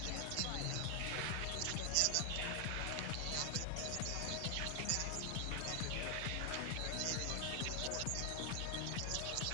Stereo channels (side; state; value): both; different; correlation 0.00